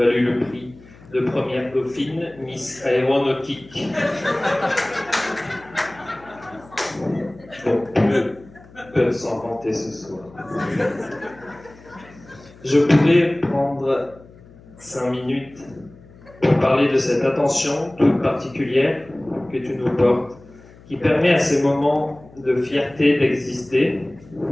le prix de première dauphine, Miss Aéronautique. Bon, peu peuvent s'en vanter ce soir. Je pourrais prendre 5 minutes pour parler de cette attention toute particulière que tu nous portes, qui permet à ces moments de fierté d'exister,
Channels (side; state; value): left; noise; hum, 23 dB below the sound